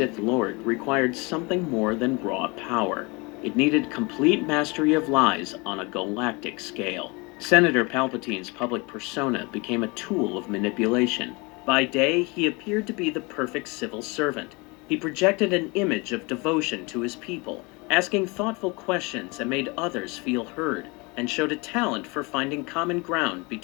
Lord required something more than raw power. It needed complete mastery of lies on a galactic scale. Senator Palpatine's public persona became a tool of manipulation. By day, he appeared to be the perfect civil servant. He projected an image of devotion to his people, asking thoughtful questions that made others feel heard, and showed a talent for finding common ground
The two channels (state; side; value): quieter; right; 27.4 dB